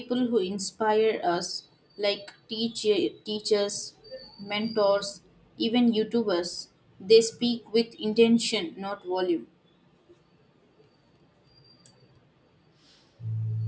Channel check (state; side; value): identical; both; correlation 1.00